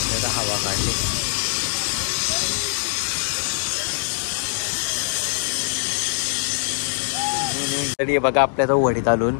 हवा काढली. तरी बघा आपल्या तो वडीत आलून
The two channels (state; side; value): silent; right; digital silence